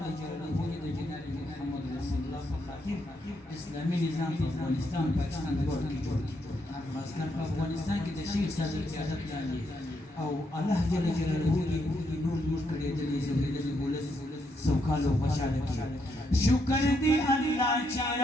جلاله جناب محمد رسول الله خاطر اسلامي نظام په افغانستان پاکستان ورور کې جوړ خاصکر په افغانستان کې د شیخ صدر قیادت لاندې او الله جل جلاله نور نور کړي د زموږ ولس سوکاله او خوشاله کړي شکر دی الله چې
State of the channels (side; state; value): both; normal; correlation 0.78